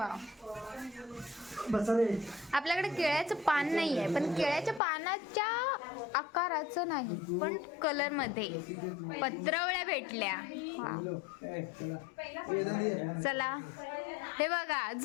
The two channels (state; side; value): drops out; right; at 4.8 s